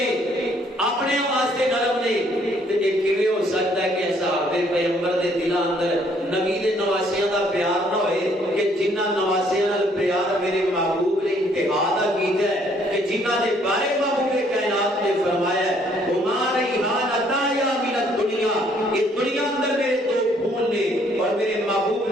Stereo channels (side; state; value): both; normal; correlation 0.65